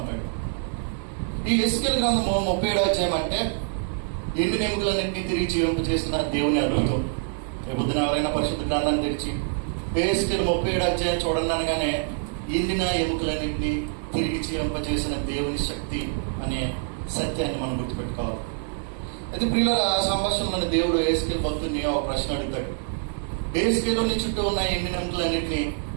ఈ యెహెజ్కేలు గ్రంథము 37వ అధ్యాయం అంటే ఎండిన ఎముకలన్నింటినీ తిరిగి జీవింపజేసిన దేవుని అద్భుతం. రేపొద్దున ఎవరైనా పరిశుద్ధ గ్రంథాన్ని తెరిచి యెహెజ్కేలు 37వ అధ్యాయం చూడండి అనగానే ఎండిన ఎముకలన్నింటినీ తిరిగి జీవింపజేసిన దేవుని శక్తి అనే సత్యాన్ని మనం గుర్తుపెట్టుకోవాలి. అయితే ప్రియులారా, ఆ సంభాషణలోని దేవుడు యెహెజ్కేలు భక్తుడిని ఒక ప్రశ్న అడుగుతాడు. యెహెజ్కేలుని చుట్టూ ఉన్న ఎండిన ఎముకలన్నింటినీ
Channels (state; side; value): silent; left; 58 dB below the other